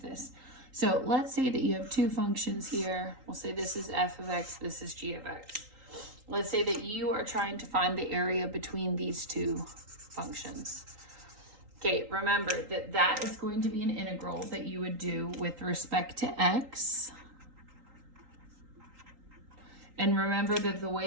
So let's say that you have two functions here. We'll say this is f of x, this is g of x. Let's say that you are trying to find the area between these two functions. Okay, remember that that is going to be an integral that you would do with respect to x. And remember that the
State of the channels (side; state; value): left; late; 3.8 ms